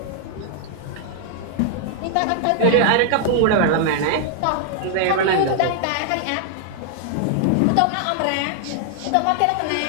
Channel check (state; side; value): different; both; correlation -0.01